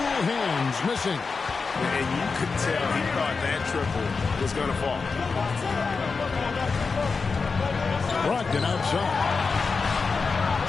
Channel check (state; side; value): quieter; right; 4.7 dB